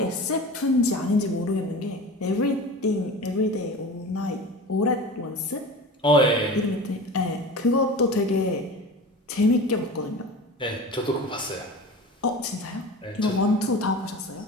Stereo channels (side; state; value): both; normal; correlation 0.34